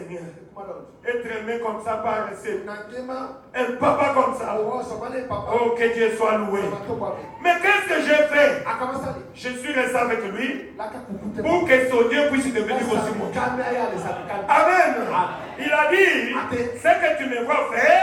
être aimé comme ça par un papa comme ça. Oh, que Dieu soit loué. Mais qu'est-ce que j'ai fait? Je suis resté avec lui pour que son Dieu puisse devenir aussi mon Dieu. Amen. Il a dit, ce que tu me vois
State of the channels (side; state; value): both; identical; correlation 1.00